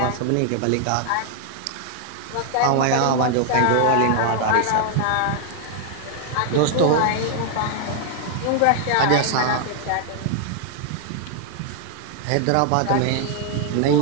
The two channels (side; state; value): both; different; correlation 0.00